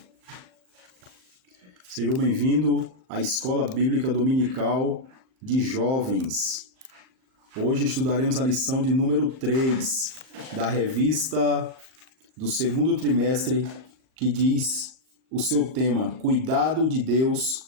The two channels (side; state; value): left; late; 38 ms